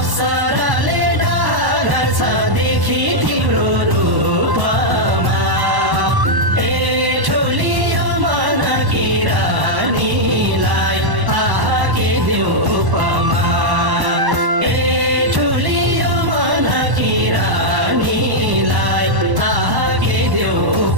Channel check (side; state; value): left; late; 1.1 ms